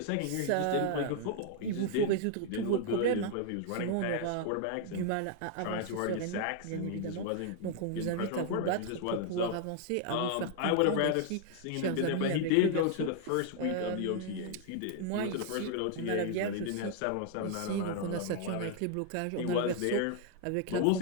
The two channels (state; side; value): different; both; correlation 0.00